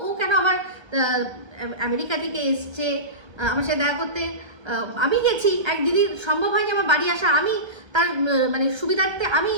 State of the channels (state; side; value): late; left; 1.3 ms